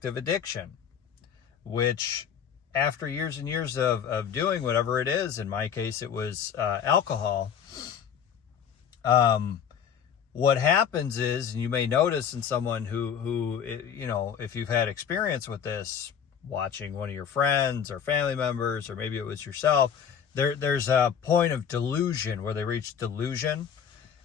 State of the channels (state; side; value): quieter; right; 7.9 dB